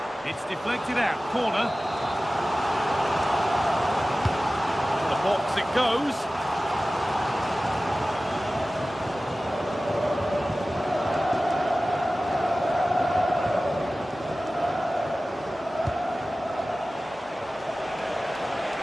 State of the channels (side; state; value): both; normal; correlation 0.96